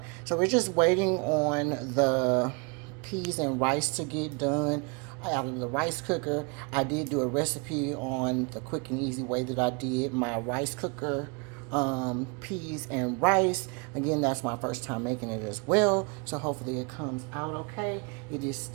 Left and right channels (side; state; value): left; quieter; 32.3 dB